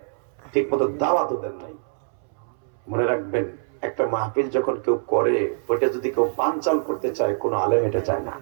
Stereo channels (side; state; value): left; silent; 62 dB below the other